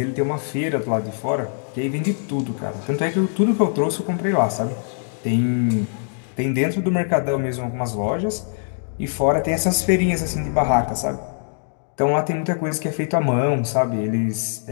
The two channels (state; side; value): silent; right; digital silence